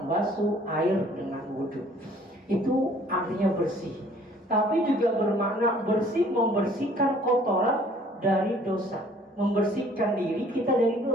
air dengan wudhu. Itu artinya bersih. Tapi juga bermakna bersih, membersihkan kotoran dari dosa, membersihkan diri kita dari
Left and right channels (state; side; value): normal; both; correlation 0.56